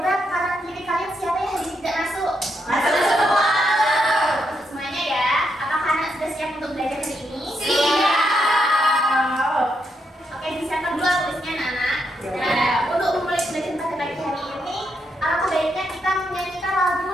kanan kiri kalian siapa yang hari ini tidak masuk? Masuk semua. Masuk semuanya ya. Apakah anak sudah siap untuk belajar hari ini? Siap. Oke, disiapkan dulu tulisnya anak-anak. Nah, untuk memulai belajar pada pagi hari ini, alangkah baiknya kita menyanyikan lagu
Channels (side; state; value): both; normal; correlation 0.80